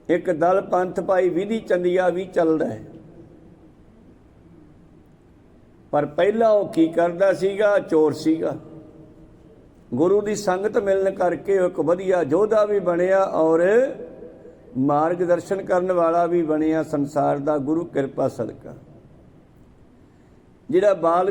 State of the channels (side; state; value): both; identical; correlation 1.00